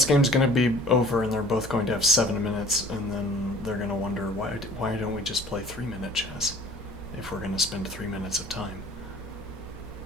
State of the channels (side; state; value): both; normal; correlation 0.49